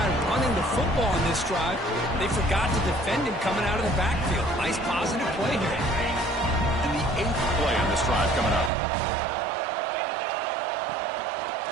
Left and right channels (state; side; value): drops out; left; at 8.7 s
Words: running the football in this drive, they forgot to defend him coming out of the backfield. Nice positive play here. And the 8th play on this drive coming up.